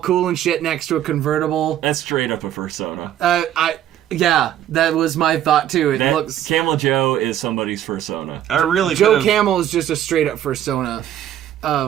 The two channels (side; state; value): left; quieter; 11.5 dB